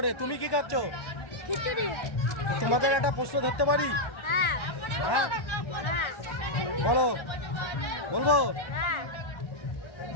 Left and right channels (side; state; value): right; late; 1.3 ms